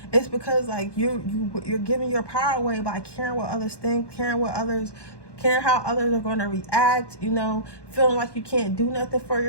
it's because, like, you're giving your power away by caring what others think, caring how others are going to react, you know, feeling like you can't do nothing for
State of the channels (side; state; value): right; late; 1.2 ms